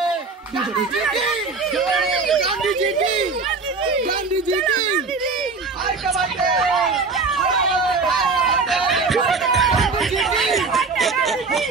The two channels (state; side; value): quieter; left; 4.3 dB